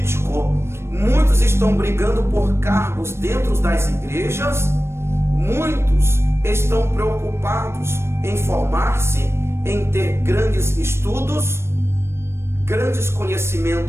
Muitos estão brigando por cargos dentro das igrejas. Muitos estão preocupados em formar-se, em ter grandes estudos, grandes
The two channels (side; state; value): left; late; 0.12 ms